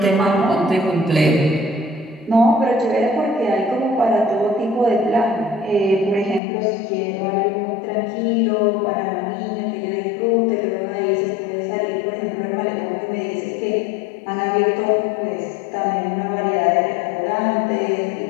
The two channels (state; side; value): drops out; right; at 6.4 s